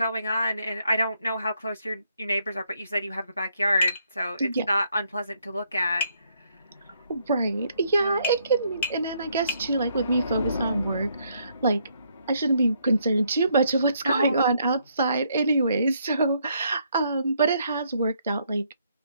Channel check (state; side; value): inverted; both; correlation -0.71